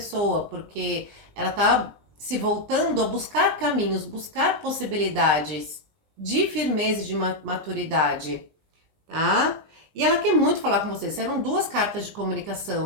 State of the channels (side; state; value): left; late; 20 ms